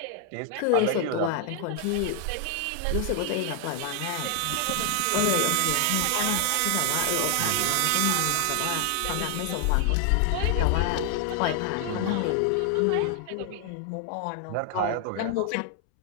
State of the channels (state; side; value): different; both; correlation 0.00